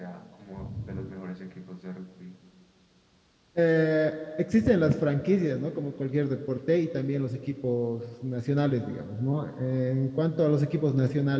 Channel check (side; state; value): both; identical; correlation 1.00